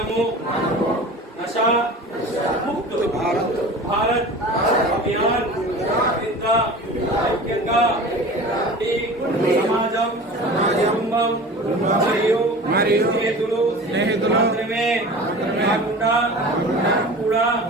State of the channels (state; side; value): normal; both; correlation 0.37